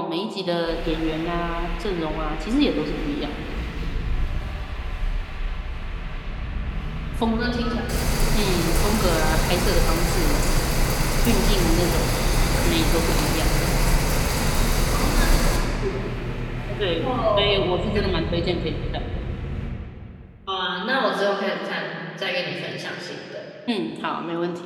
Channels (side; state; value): both; identical; correlation 1.00